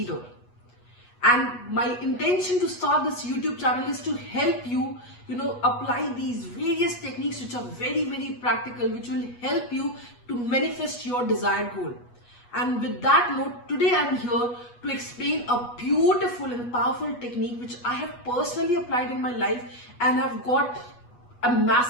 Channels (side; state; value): right; late; 8.3 ms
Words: And my intention to start this YouTube channel is to help you, apply these various techniques which are very, very practical, which will help you to manifest your desired goal. And with that note, today I'm here to explain a beautiful and powerful technique which I have personally applied in my life and have got a